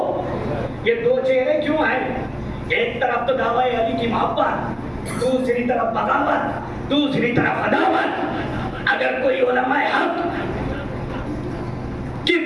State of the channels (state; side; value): identical; both; correlation 1.00